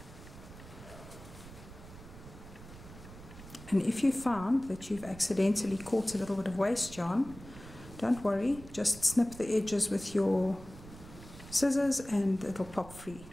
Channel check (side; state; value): right; noise; rumble, 16 dB below the sound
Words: And if you found that you've accidentally caught a little bit of waste yarn, don't worry, just snip the edges with your scissors and it'll pop free.